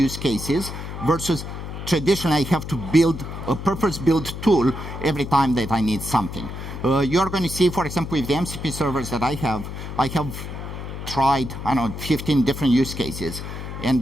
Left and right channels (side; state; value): left; noise; hum, 8 dB below the sound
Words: cases, versus traditionally I have to build a purpose-built tool every time that I need something. You're going to see, for example, with the MCP servers that I have tried, 15 different use cases,